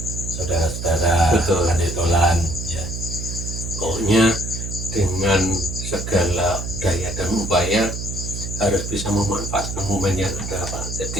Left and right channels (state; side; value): noise; right; hum, 6 dB below the sound